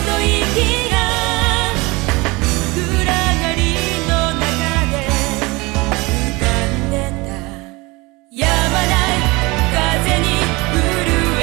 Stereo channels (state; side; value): quieter; left; 24.0 dB